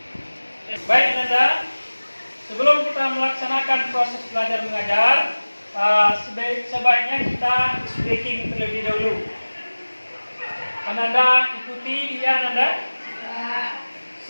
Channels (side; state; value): both; inverted; correlation -1.00